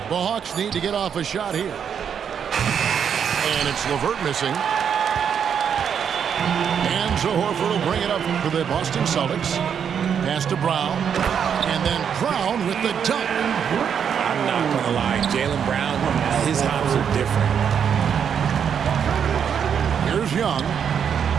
The Hawks need to get off a shot here. And it's LeVert missing. And Horford will bring it up for the Boston Celtics. Pass to Brown. And then Brown with the dunk. I'm not going to lie. Jaylen Brown, his hops are different. Here's Young.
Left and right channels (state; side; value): quieter; left; 7.7 dB